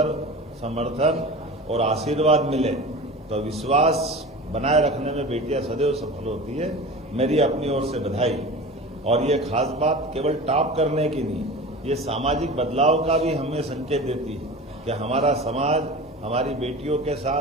समर्थन और आशीर्वाद मिले तो विश्वास बनाए रखने में बेटियां सदैव सफल होती है। मेरी अपनी ओर से बधाई। और ये खास बात केवल टॉप करने की नहीं, ये सामाजिक बदलाव का भी हमें संकेत देती है कि हमारा समाज हमारी बेटियों के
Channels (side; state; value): both; normal; correlation 0.34